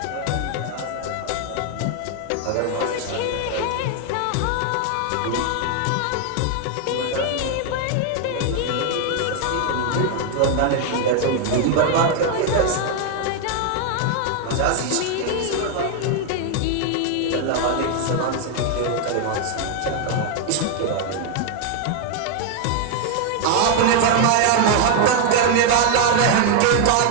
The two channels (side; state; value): both; different; correlation 0.00